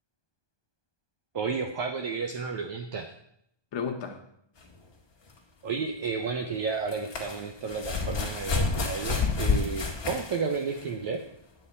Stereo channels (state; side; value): late; right; 1.2 ms